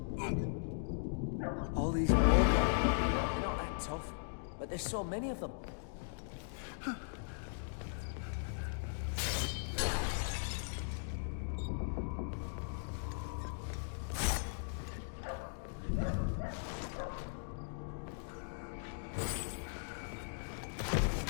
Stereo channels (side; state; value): right; silent; digital silence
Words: All these wargod, they're not that tough, but there's so many of them.